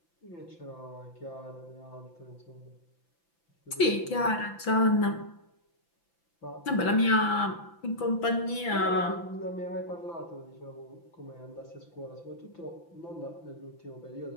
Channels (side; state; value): right; late; 5.9 ms